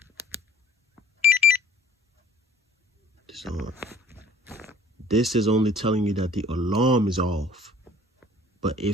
So, this is only telling you that the alarm is off. But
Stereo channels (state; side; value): normal; both; correlation 0.53